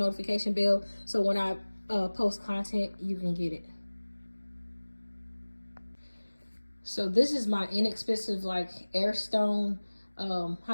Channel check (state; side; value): inverted; both; correlation -1.00